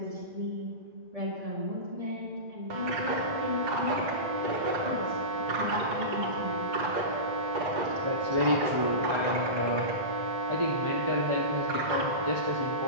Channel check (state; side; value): late; left; 2.1 ms